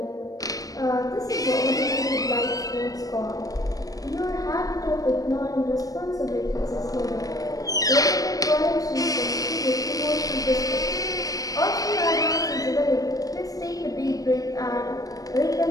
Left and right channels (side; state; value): right; late; 0.17 ms